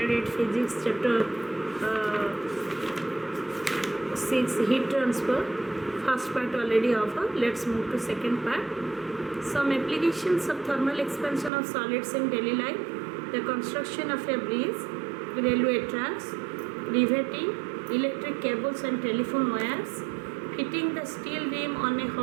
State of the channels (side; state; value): left; drops out; at 11.5 s